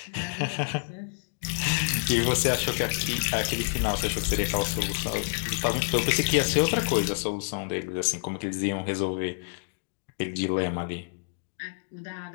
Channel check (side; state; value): right; silent; digital silence